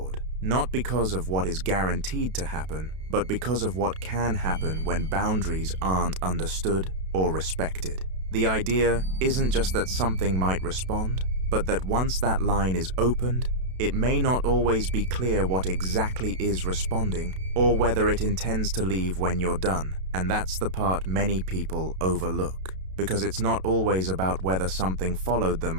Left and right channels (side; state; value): left; late; 32 ms